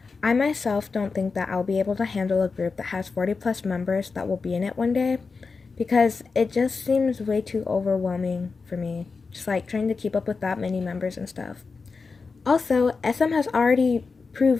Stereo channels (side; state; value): right; quieter; 4.6 dB